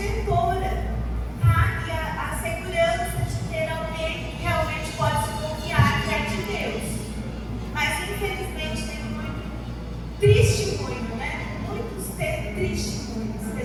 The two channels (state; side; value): identical; both; correlation 1.00